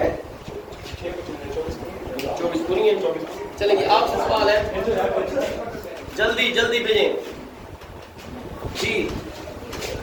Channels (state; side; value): identical; both; correlation 1.00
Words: है 24 पूरी है। चलेंगे, आपसे सवाल है, जल्दी जल्दी भेजें जी।